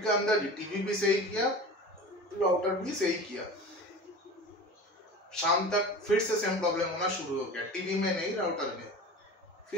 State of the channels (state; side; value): normal; both; correlation 0.34